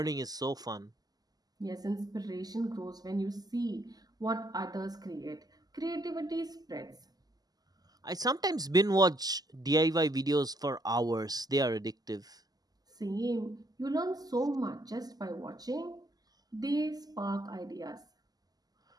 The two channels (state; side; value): late; left; 0.18 ms